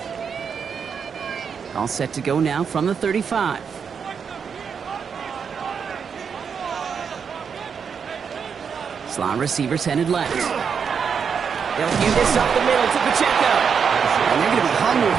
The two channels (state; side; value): quieter; left; 6.6 dB